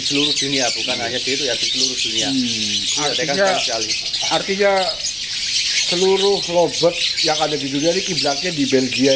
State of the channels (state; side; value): noise; right; rumble, 22 dB below the sound